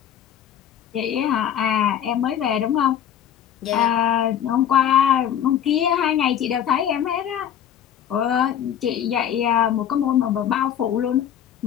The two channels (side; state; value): right; quieter; 9.7 dB